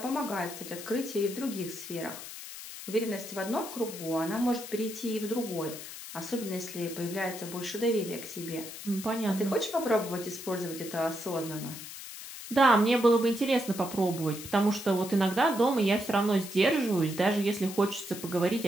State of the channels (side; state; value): left; noise; hiss, 11 dB below the sound